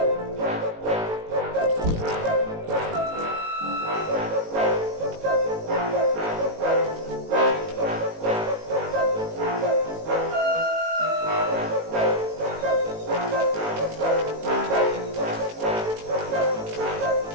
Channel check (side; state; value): left; late; 18 ms